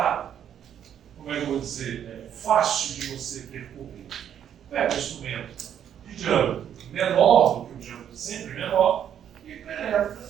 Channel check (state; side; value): quieter; left; 9.4 dB